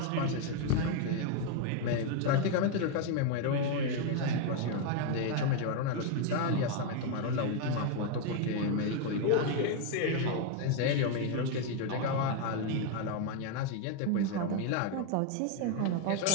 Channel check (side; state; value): both; different; correlation 0.01